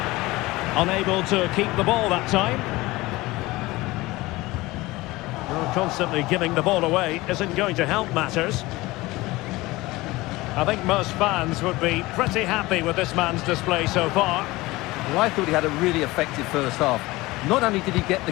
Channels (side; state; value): right; quieter; 20.2 dB